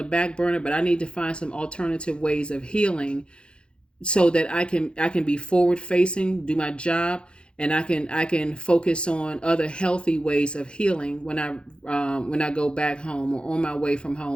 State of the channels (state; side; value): late; right; 0.054 ms